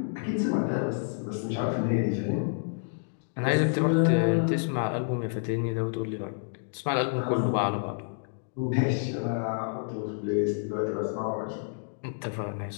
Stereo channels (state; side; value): silent; right; digital silence